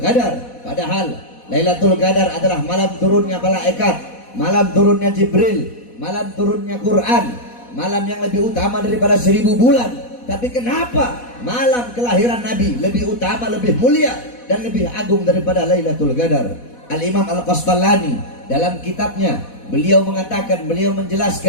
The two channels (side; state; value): right; late; 4.1 ms